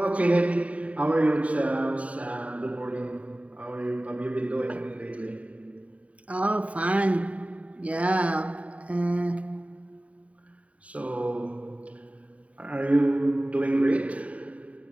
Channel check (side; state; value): left; late; 0.067 ms